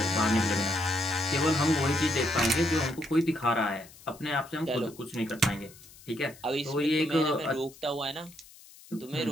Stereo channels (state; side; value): noise; left; hiss, 22 dB below the sound